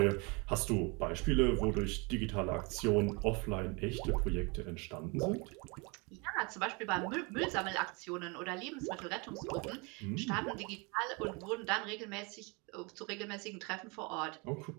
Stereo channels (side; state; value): left; quieter; 29.8 dB